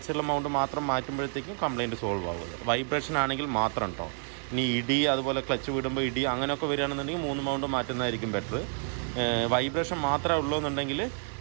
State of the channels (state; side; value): silent; left; 58 dB below the other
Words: സൈഡിലെ മൗണ്ട് മാത്രം മാറ്റുമ്പോഴത്തേക്കും കംപ്ലയിൻറ്റ് സോൾവ് ആവുന്നത്. വൈബ്രേഷൻ ആണെങ്കിൽ മാത്രം കേട്ടോ. ഇനി ഇടി അതുപോലെ ക്ലച്ച് വിടുമ്പോൾ ഇടി അങ്ങനെയൊക്കെ വരികയാണെന്നുണ്ടെങ്കിൽ 3 മൗണ്ട് മാറ്റുന്നതായിരിക്കും ബെറ്റർ. വൈബ്രേഷൻ മാത്രമേ ഉള്ളൂ എന്നുണ്ടെങ്കിൽ